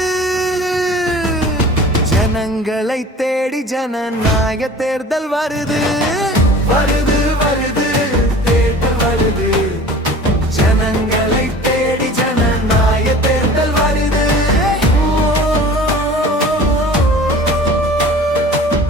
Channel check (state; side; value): normal; both; correlation 0.42